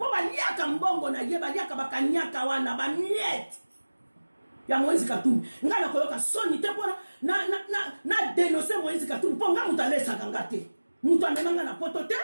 baliaka mbongo na ye baliaka bakanyaka wana bamiete ya Moïse Katumbi nga na koyoka soni te pona na dénoncer Moïse Katumbi po nga mutu alesaka nga te mutu amemanga na poto te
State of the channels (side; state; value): both; inverted; correlation -1.00